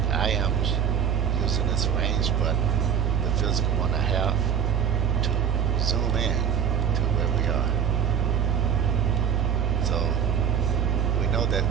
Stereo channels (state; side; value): quieter; left; 7.9 dB